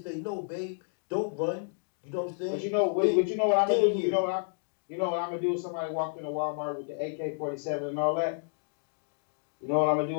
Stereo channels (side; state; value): right; silent; digital silence